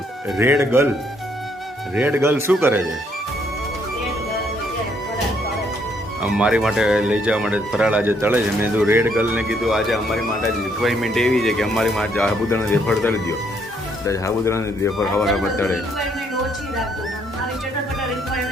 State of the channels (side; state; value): both; normal; correlation 0.70